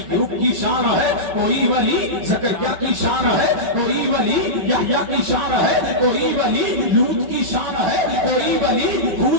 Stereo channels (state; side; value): late; left; 5.3 ms